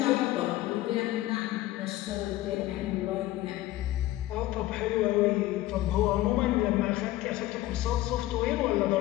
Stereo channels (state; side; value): quieter; right; 16.1 dB